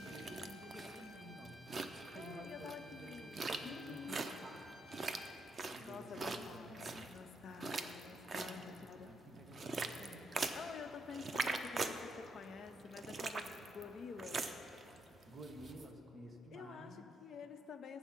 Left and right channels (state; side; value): normal; both; correlation 0.78